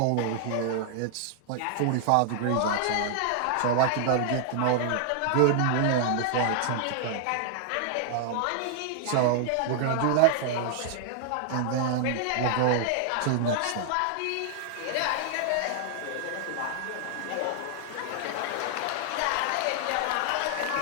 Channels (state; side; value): different; both; correlation 0.00